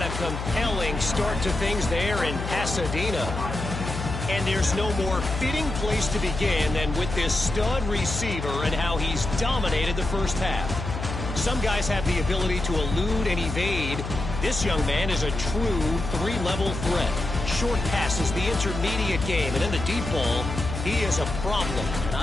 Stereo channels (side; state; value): left; noise; hum, 6 dB below the sound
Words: a compelling start to things there in Pasadena. And there's no more fitting place to begin than with this stud receiver and how he's dominated the first half. Some guys have the ability to elude and evade. This young man is a true 3-level threat. Short passes, the intermediate game, and in the deep ball, he is a problem. And